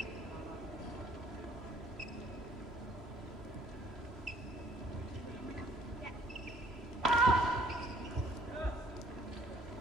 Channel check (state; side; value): normal; both; correlation 0.60